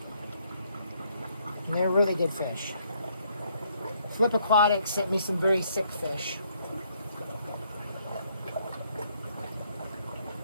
And they're really good fish. Flip Aquatics sent me some very sick fish.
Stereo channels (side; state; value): both; inverted; correlation -0.69